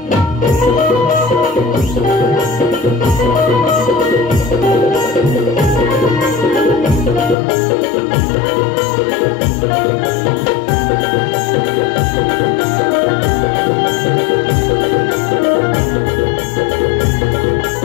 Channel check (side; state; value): right; drops out; at 7.4 s